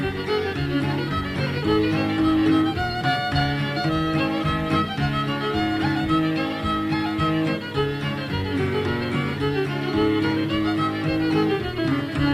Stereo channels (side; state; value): both; identical; correlation 1.00